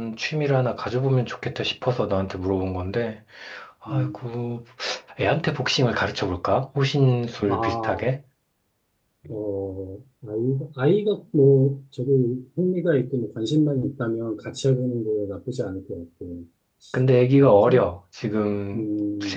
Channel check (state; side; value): identical; both; correlation 1.00